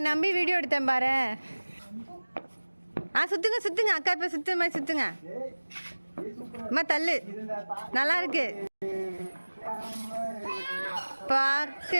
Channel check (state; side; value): inverted; both; correlation -1.00